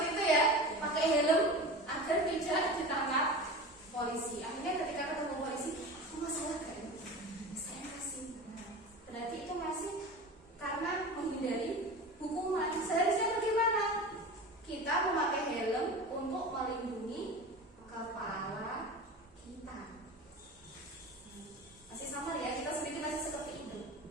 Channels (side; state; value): both; normal; correlation 0.32